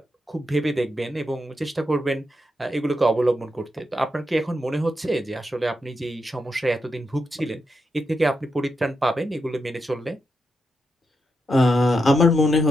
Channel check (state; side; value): normal; both; correlation 0.85